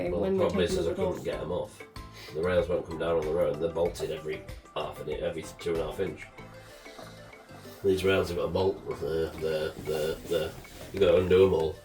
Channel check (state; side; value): identical; both; correlation 1.00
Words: Well, when the problem we is I couldn't get them off. The rails won't come down on the road. They're bolted every 2.5 inch. These rails have got a bolt. They're you got to undo them all,